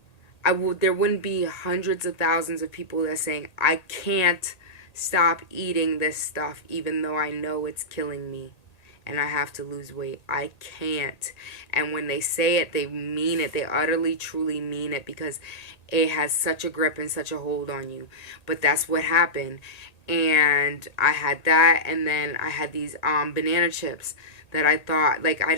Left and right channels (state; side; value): late; right; 1.8 ms